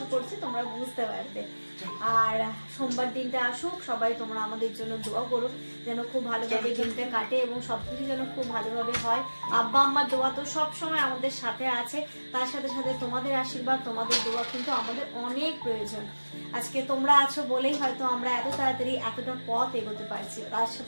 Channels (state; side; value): inverted; both; correlation -1.00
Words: করছি তোমরা বুঝতে পারবে। আর সোমবার দিনটা আসুক, সবাই তোমরা আমাদের জন্য দোয়া করো যেন খুব ভালোভাবে দিনটা কাটে এবং সবকিছু যেন খুব ভালোভাবে হয়। আব্বা আম্মার দোয়া তো সব সময় আমাদের সাথে আছে, তার সাথে সাথে তোমাদের আশীর্বাদ, তোমাদের দোয়া কিন্তু আমাদের অনেক প্রয়োজন। আজকে তোমরা আছো বলেই হয়তো আমরা এত তাড়াতাড়ি এতটা পথ এগোতে পারছি, তার